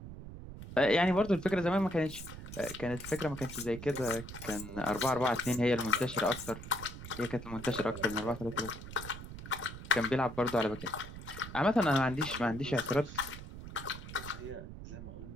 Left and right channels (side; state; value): right; noise; rumble, 11 dB below the sound